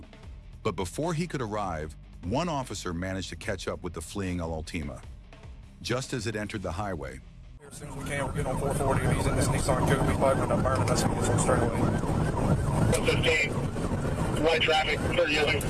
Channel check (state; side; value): identical; both; correlation 1.00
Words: but before he could arrive, one officer managed to catch up with the fleeing Altima. Just as it entered the highway, As soon as we can, we'll get on 440. If he's in this Nissan Coupe, he's probably going to burn it. That's going to get straight away. 115, white traffic, 30 yielding.